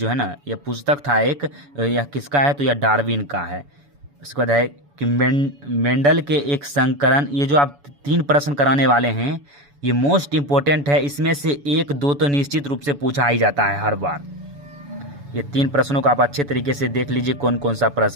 है ना यह पुस्तक था एक, यह किसका है, तो यह डार्विन का है। उसके बाद है कि मेंडल के एक संकरण, ये जो आप 3 प्रश्न कराने वाले हैं ये मोस्ट इंपॉर्टेंट है, इसमें से 1-2 तो निश्चित रूप से पूछा ही जाता है हर बार। ये 3 प्रश्नों को आप अच्छे तरीके से देख लीजिए कौन कौन सा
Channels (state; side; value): late; left; 7.0 ms